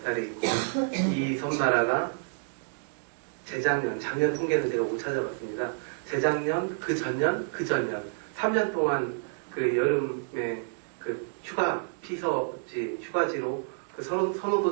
있고 이 섬나라가 작년 통계는 제가 못 찾아봤습니다. 재작년, 그 전년 3년 동안 그 여름에 그 휴가지로 그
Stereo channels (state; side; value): silent; left; digital silence